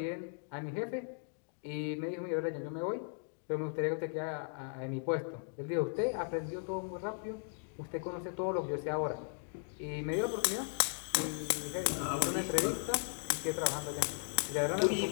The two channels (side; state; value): right; silent; 53 dB below the other